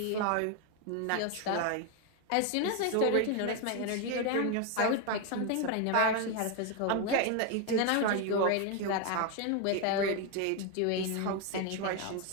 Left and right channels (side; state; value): both; different; correlation 0.02